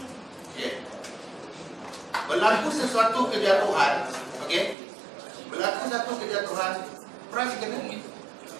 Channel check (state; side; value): drops out; left; at 4.8 s